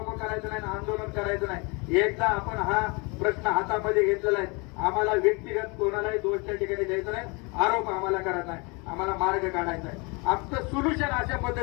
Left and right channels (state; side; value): quieter; right; 29.1 dB